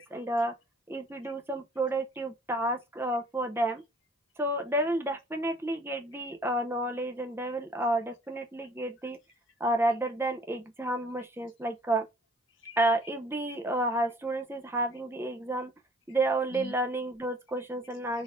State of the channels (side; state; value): both; normal; correlation 0.54